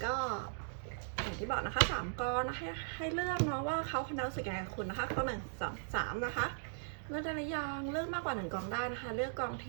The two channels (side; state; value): left; silent; digital silence